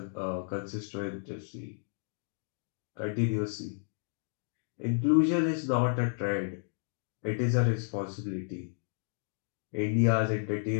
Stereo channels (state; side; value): silent; right; digital silence